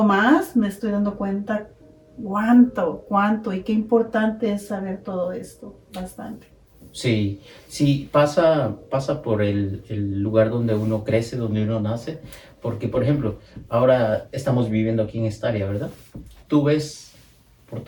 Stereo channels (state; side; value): identical; both; correlation 1.00